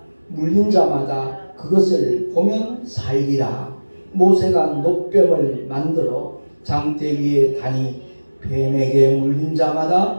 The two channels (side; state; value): both; inverted; correlation -1.00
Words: 물린 자마다 그것을 보면 살리라. 모세가 놋뱀을 만들어 장대 위에 다니 뱀에게 물린